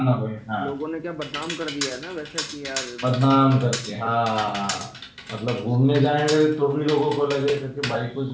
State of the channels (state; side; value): identical; both; correlation 1.00